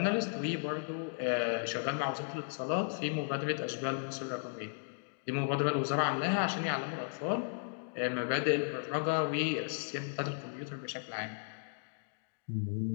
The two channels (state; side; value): silent; right; digital silence